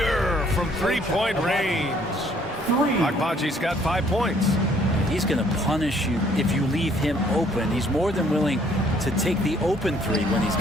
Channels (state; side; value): normal; both; correlation 0.63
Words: from 3-point range. Abaji's got 5 points. He's going to punish you if you leave him open. He's more than willing to take the open 3 when he's